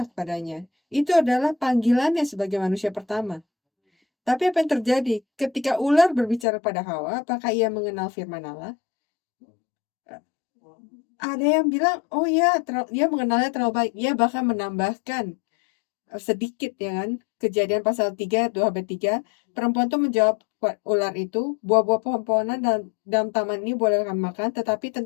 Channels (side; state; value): right; drops out; at 6.5 s